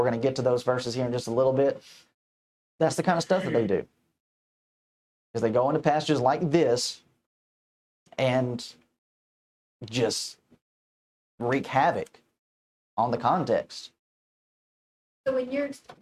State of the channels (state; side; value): identical; both; correlation 1.00